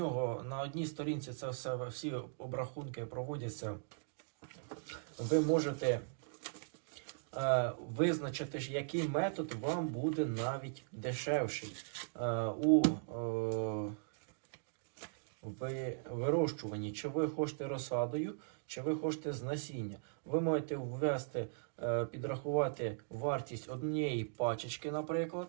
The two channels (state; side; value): silent; left; digital silence